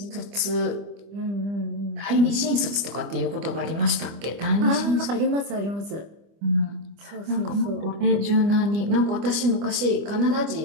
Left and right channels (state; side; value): late; left; 25 ms